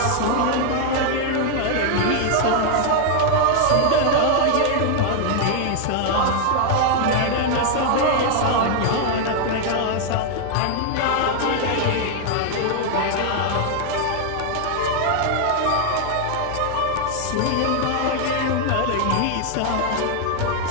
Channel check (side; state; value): both; different; correlation 0.00